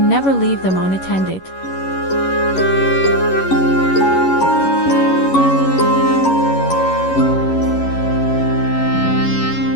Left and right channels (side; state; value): right; late; 11 ms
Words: never leave them unattended.